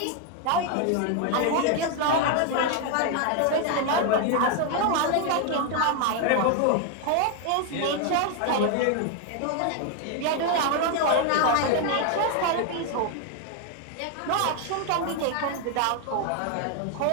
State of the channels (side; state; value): both; different; correlation 0.01